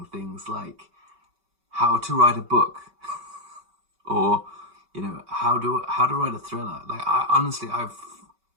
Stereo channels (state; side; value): late; left; 5.2 ms